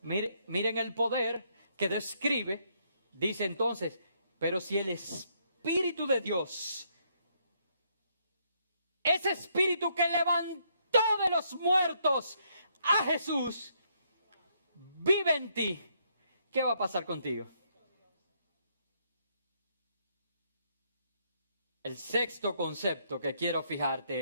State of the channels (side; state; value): both; inverted; correlation -0.72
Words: miren el poder que describe, dice entonces, pero si el Espíritu de Dios, ese Espíritu que levantó de los muertos a Jesús, vive en ti, ¿qué va a pasar contigo? El sexto concepto que quiero